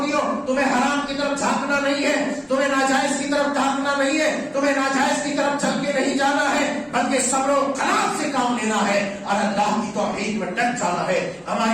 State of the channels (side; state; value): both; identical; correlation 1.00